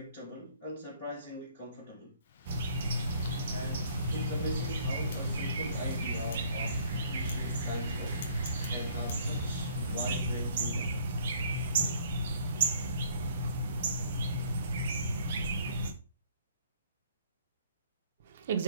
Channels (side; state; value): both; inverted; correlation -0.59